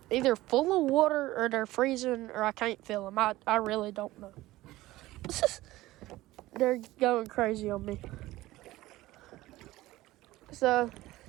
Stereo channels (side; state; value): left; quieter; 17.3 dB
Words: either full of water or they're freezing or I can't feel them. I really don't know. They're going crazy on me. So,